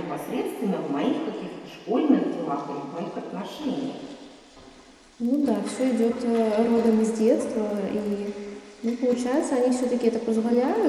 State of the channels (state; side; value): identical; both; correlation 1.00